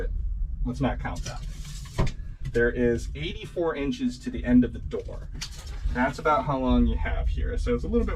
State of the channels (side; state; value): both; identical; correlation 1.00